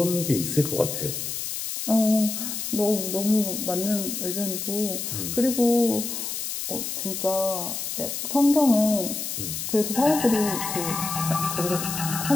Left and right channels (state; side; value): noise; left; hiss, 4 dB below the sound